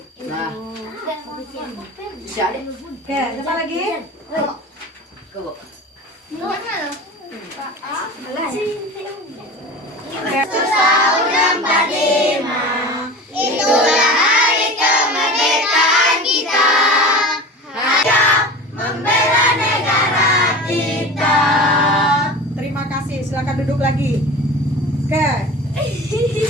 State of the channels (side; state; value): both; normal; correlation 0.34